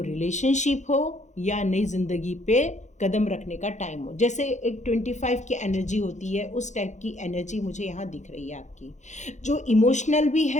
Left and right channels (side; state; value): right; late; 0.34 ms